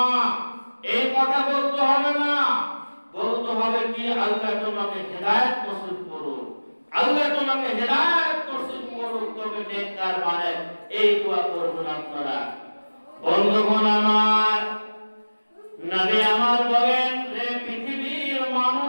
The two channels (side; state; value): both; inverted; correlation -1.00